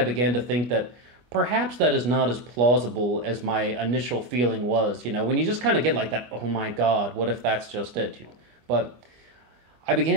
began to think that perhaps that is not as plausible as my initial feeling was. When you just kind of get like that, oh my God, what if that's just it? But I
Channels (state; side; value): late; left; 25 ms